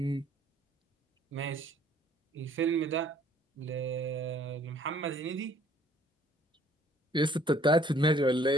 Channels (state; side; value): normal; both; correlation 0.59